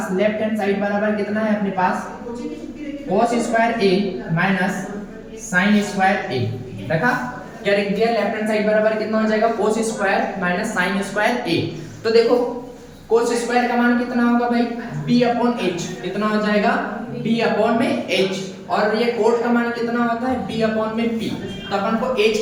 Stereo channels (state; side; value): identical; both; correlation 1.00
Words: लेफ्ट हैंड साइड बराबर कितना है अपने पास cos square a minus sin square a, देखा क्या लिख दिया, लेफ्ट हैंड साइड बराबर कितना हो जाएगा cos square minus sin square a। तो देखो cos स्क्वायर का मान कितना होगा भाई b अपॉन h, कितना हो जाएगा b अपॉन में h, और ये कोट का मान कितना होता है b अपॉन में p, तो अपन को